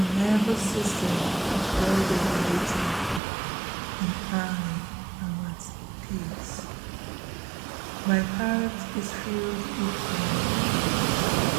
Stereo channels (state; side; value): drops out; left; at 3.2 s